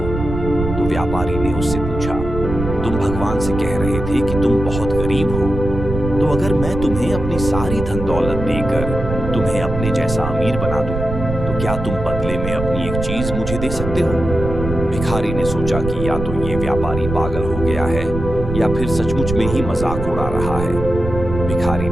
तो व्यापारी ने उससे पूछा, तुम भगवान से कह रहे थे कि तुम बहुत गरीब हो, तो अगर मैं तुम्हें अपनी सारी धन दौलत देकर तुम्हें अपने जैसा अमीर बना दूं, तो क्या तुम बदले में अपनी एक चीज मुझे दे सकते हो। भिखारी ने सोचा कि या तो ये व्यापारी पागल हो गया है या फिर सचमुच में ही मजाक उड़ा रहा है। भिखारी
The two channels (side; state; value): right; noise; rumble, 6 dB below the sound